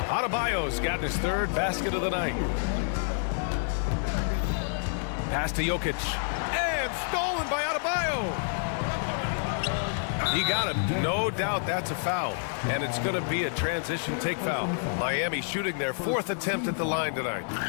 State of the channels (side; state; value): right; silent; digital silence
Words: Adebayo's got his 3rd basket of the night. Pass to Jokic. And stolen by Adebayo. He got him. No doubt that's a foul. And it's going to be a transition take foul. Miami shooting their 4th attempt at the line tonight.